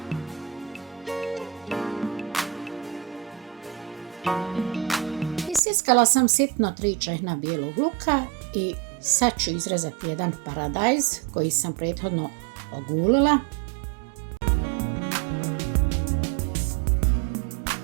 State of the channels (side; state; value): left; drops out; at 5.6 s